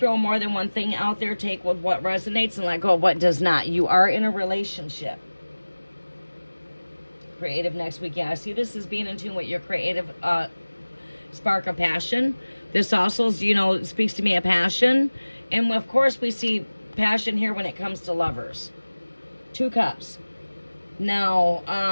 more than one thing out there. Take with what resonates and let go of what does not. You are in a relationship. Creative next week. Yeah, I see this as being in tune with your creative spark of passion. This also, speaks to me of passion. And of course, we see passion here when it comes to lovers. Two Cups. Now,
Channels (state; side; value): inverted; both; correlation -1.00